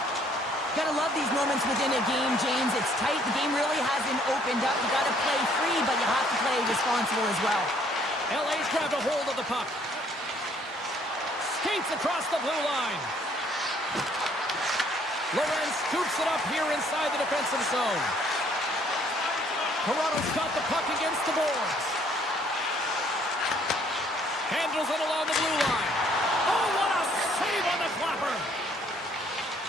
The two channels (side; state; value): both; normal; correlation 0.63